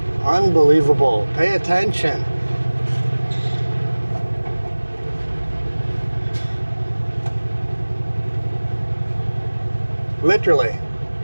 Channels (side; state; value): both; inverted; correlation -1.00